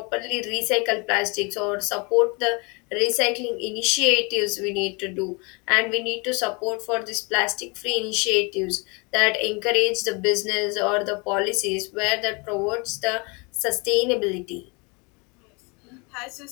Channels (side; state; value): right; quieter; 30.1 dB